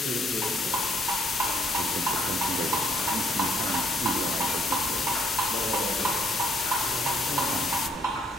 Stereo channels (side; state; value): both; normal; correlation 0.68